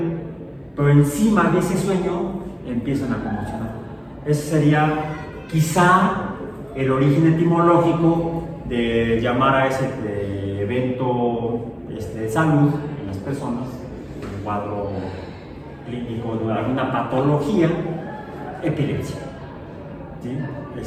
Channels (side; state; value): both; identical; correlation 1.00